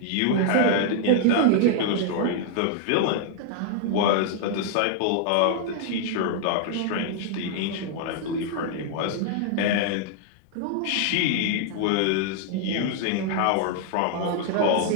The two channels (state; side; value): different; both; correlation 0.00